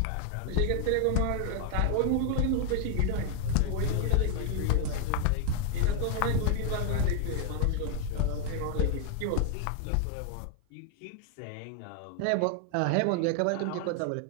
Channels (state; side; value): different; both; correlation 0.00